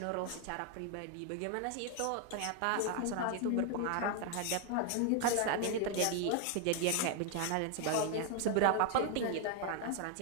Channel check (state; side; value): different; both; correlation 0.00